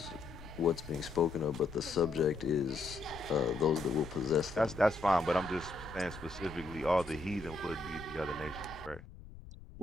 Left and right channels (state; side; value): noise; left; rumble, 16 dB below the sound